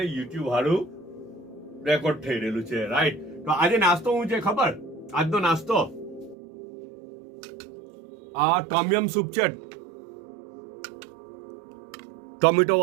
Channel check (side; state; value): left; drops out; at 6.4 s